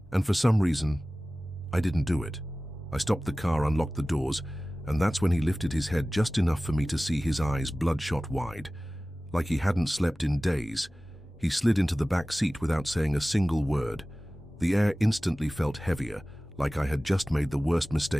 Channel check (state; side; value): normal; both; correlation 0.97